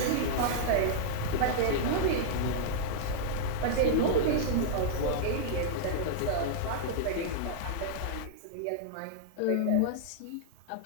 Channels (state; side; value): different; both; correlation -0.02